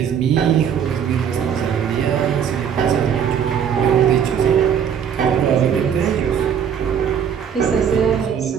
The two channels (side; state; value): left; quieter; 8.1 dB